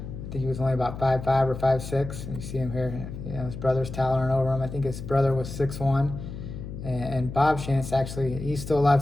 think he was only about 5'5" or 5'6". And you see him here, his brother's towering over him. I think his brother was 6'1". And Bob Shantz, actually, he's still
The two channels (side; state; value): left; noise; hum, 9 dB below the sound